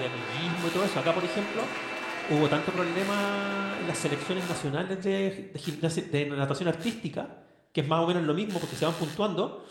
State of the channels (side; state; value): both; identical; correlation 1.00